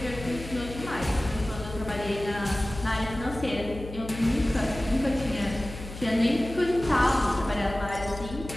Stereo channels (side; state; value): left; noise; hum, 11 dB below the sound